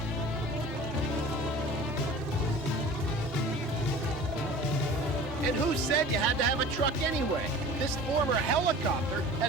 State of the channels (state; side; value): normal; both; correlation 0.41